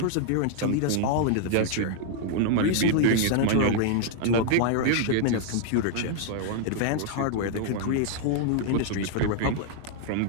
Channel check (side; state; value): both; different; correlation -0.01